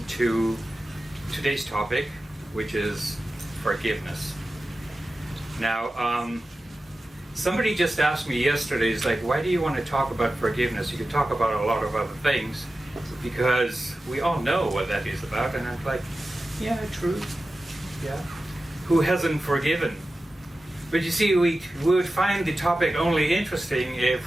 to today's topic, which is forgiveness. Now, somebody just asked me yesterday, it's like, why do you want to talk about forgiveness? You could talk about a lot of other things because we all know what that is about. And I'm like, yeah, true. Yeah. Who hasn't forgiven? But you see, we would find the topic only interesting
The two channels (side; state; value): both; normal; correlation 0.94